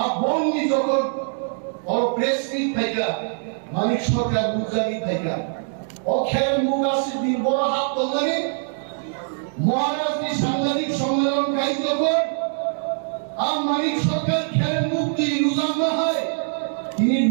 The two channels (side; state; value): left; silent; digital silence